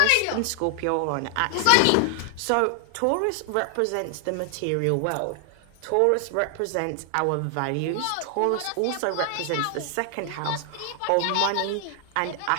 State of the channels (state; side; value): different; both; correlation 0.00